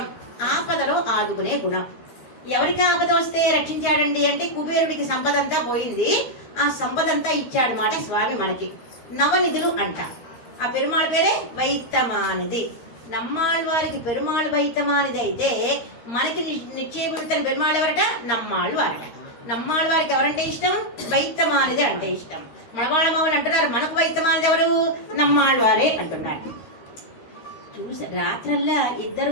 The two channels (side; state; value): right; late; 13 ms